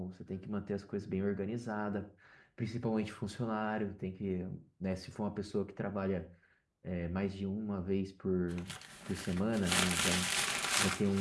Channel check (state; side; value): identical; both; correlation 1.00